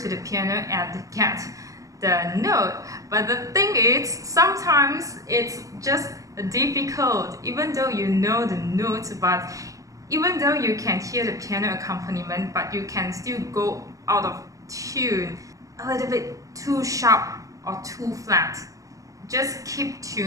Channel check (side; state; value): left; late; 0.16 ms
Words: the piano and get the note. But the thing is, sometimes it's just difficult, even though you know the notes, but even though you can hear the piano accompaniment, but you can still go out of tune, a little bit too sharp or too flat. Just keep